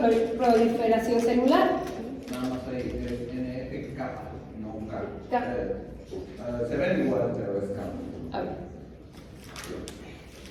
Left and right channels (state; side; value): identical; both; correlation 1.00